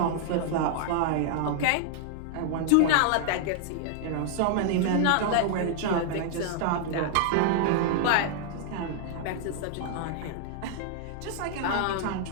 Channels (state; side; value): different; both; correlation -0.01